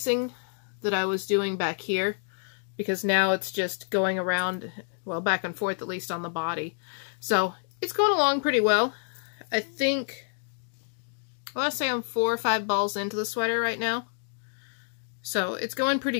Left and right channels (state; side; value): silent; right; 59 dB below the other